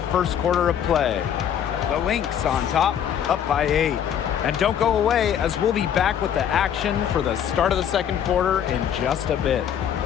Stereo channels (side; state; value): right; quieter; 9.2 dB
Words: first quarter of play. The Lynx on top, up by 8. And don't go away, as we'll be back with the action for the start of the second quarter in just a bit.